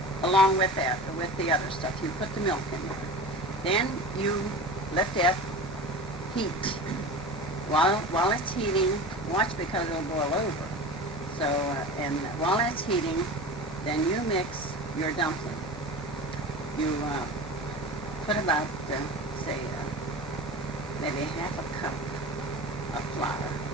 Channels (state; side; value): normal; both; correlation 0.32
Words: Along with that, with the other stuff, you put the milk in there. Then you let that heat. While it's heating, watch because it'll boil over. So, and while it's heating, then you mix your dumpling. You put about, say, maybe half a cup of flour,